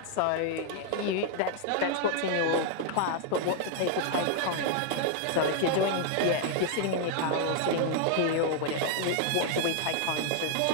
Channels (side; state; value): both; different; correlation 0.00